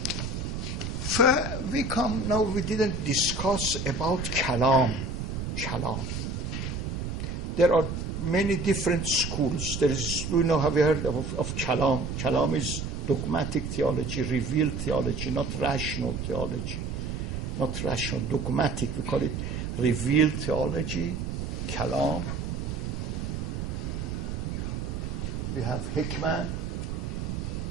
we didn't discuss about kalam. There are many different schools. Have you heard of kalam? Kalam is dogmatic theology, revealed theology, not rational theology. Not rational, dogmatic. We call it revealed theology, kalam. We have hikmah.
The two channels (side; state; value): right; noise; rumble, 4 dB below the sound